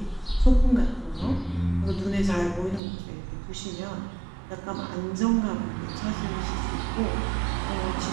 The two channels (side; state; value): left; drops out; at 2.8 s